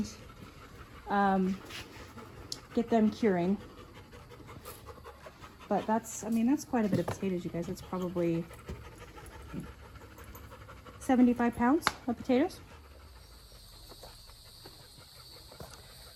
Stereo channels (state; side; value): identical; both; correlation 1.00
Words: get them curing. But that's, I mean, that's quite a bit of potatoes, you guys. That's probably 75 pounds of potatoes.